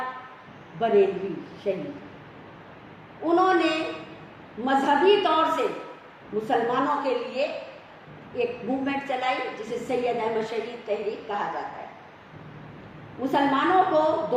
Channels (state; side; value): identical; both; correlation 1.00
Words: بریلوی شہید۔ انہوں نے مذہبی طور سے مسلمانوں کے لیے ایک موومنٹ چلائی جسے سید احمد شہید تحریک کہا جاتا ہے، مسلمانوں کو